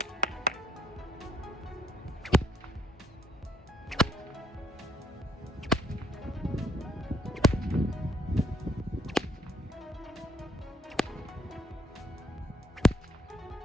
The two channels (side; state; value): both; normal; correlation 0.65